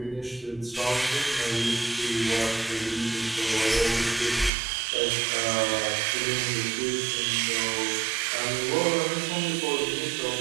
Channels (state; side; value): drops out; left; at 4.5 s